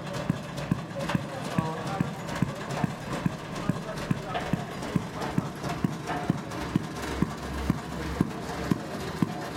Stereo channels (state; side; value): identical; both; correlation 1.00